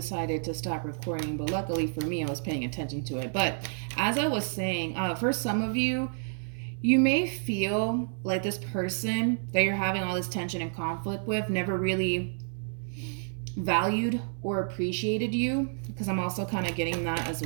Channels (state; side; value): silent; left; 57 dB below the other